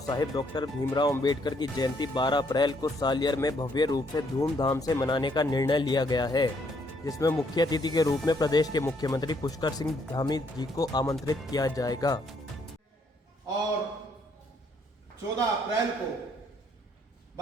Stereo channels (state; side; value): normal; both; correlation 0.69